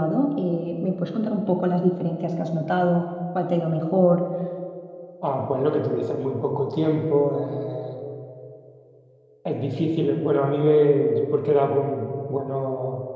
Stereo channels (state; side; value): identical; both; correlation 1.00